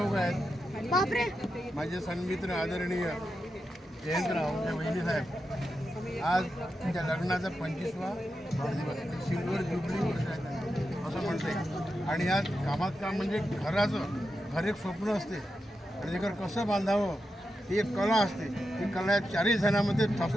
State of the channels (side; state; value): both; normal; correlation 0.88